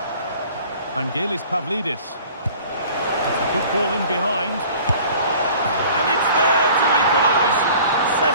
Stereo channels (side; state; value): both; inverted; correlation -0.48